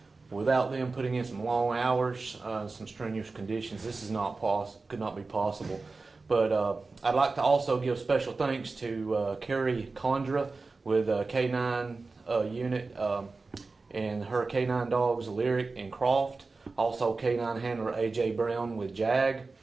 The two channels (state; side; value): quieter; left; 3.8 dB